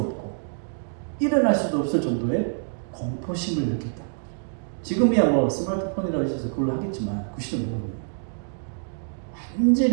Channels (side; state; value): left; silent; digital silence